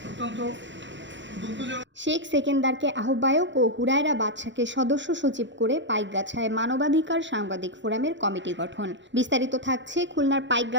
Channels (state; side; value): late; left; 0.54 ms